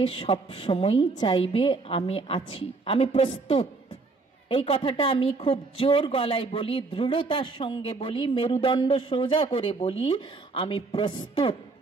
সব সময়ই চাইবে, আমি আছি, আমি প্রস্তুত। এই কথাটা আমি খুব জোর গলায় বলি, দৃঢ়তার সঙ্গে বলি, মেরুদণ্ড সোজা করে বলি, আমি প্রস্তুত।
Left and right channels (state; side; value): quieter; left; 3.8 dB